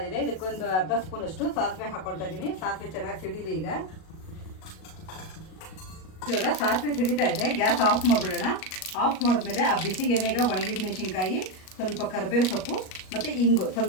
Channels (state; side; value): late; right; 38 ms